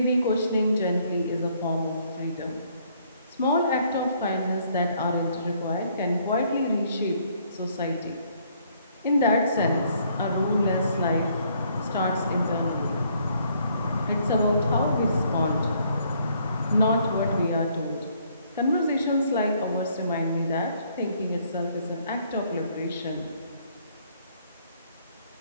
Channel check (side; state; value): both; inverted; correlation -0.66